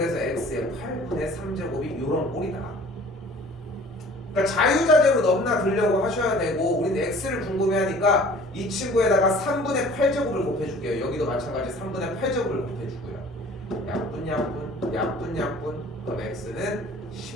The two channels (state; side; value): normal; both; correlation 0.49